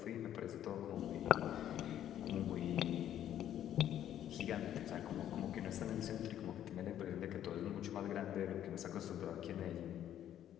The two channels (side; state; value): right; quieter; 11.0 dB